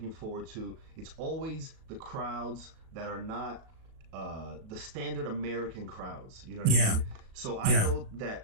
forward to. It's always the crowds that are not the standard American crowds. You know what I mean? So I know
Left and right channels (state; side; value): late; left; 37 ms